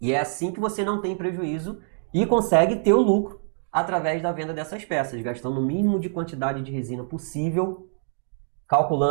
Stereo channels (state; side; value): silent; left; digital silence